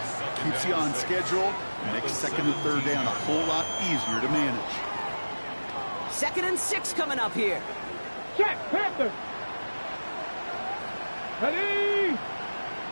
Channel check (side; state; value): both; inverted; correlation -1.00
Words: keeps you on schedule, makes second and third down a whole lot easier to manage. 2nd and 6 coming up here. Check, Panthers. Ready.